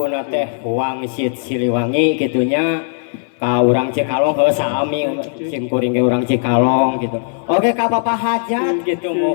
teh Wangsit Siliwangi kitunya ka urang Cikalong heuh sami sim kuring ge urang Cikalong gitu. Oke ka Bapak Hajat gitu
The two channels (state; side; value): silent; right; 68 dB below the other